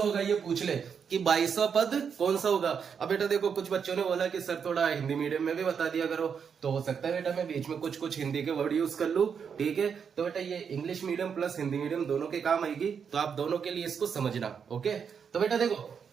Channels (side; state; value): left; quieter; 6.8 dB